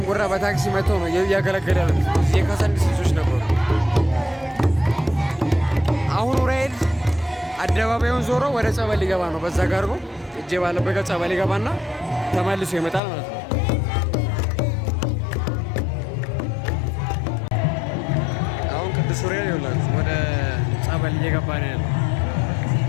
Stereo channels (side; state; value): right; drops out; at 13.0 s